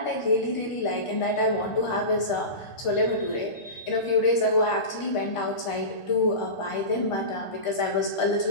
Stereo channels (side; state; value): right; late; 1.4 ms